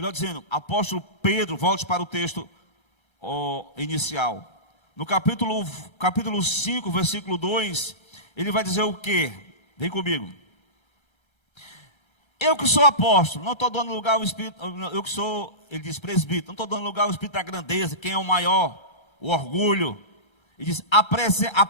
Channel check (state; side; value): late; right; 1.3 ms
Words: dizendo, apóstolo Pedro, volte para o texto inicial. No capítulo 5, versículo 2, ele vai dizer o quê? Vem comigo. Eu que sou apóstolo, não estou dando lugar ao espírito, ele diz presbítero, não estou dando lugar ao espírito da grandeza, quem é o maior, o orgulho, E diz: